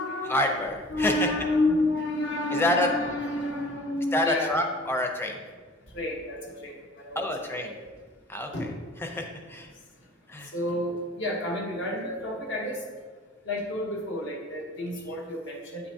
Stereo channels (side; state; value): both; normal; correlation 0.45